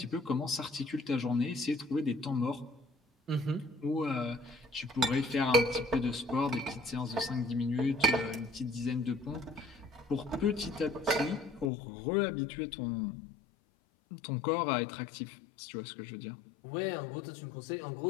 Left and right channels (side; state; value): right; drops out; at 11.7 s